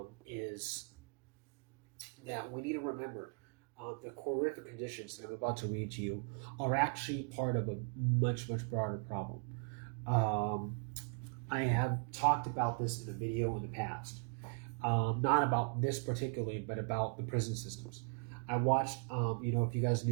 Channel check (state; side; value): quieter; left; 39.2 dB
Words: is that we need to remember the horrific conditions that I'm about to read to you are actually part of a much, much broader problem. I have talked about this in a video in the past, not about this particularly, but about the prison systems. I watched, you know, if you guys